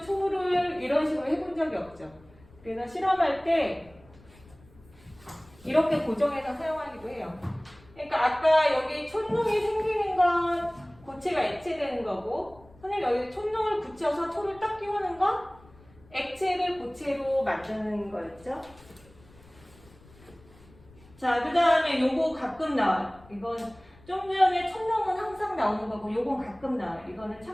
초를 이런 식으로 해본 적이 없죠. 그래서 실험할 때 이렇게 고정해서 사용하기도 해요. 그러니까 아까 여기 촛농이 생기는 건 고체가 액체되는 거고, 선생님 여기 촛농을 붙여서 초를 딱 끼우는 건 액체를 고체로 만드는 거였죠. 자, 그 다음에 요거 가끔 나와요. 이건 좀 전에 촛농은 항상 나오는 거고 요건 가끔 나와요. 이거는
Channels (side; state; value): left; noise; rumble, 25 dB below the sound